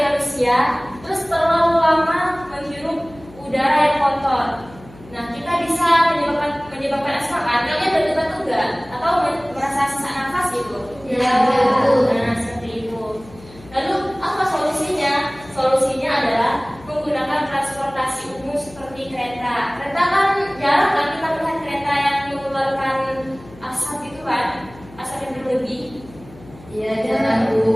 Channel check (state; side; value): noise; left; hum, 21 dB below the sound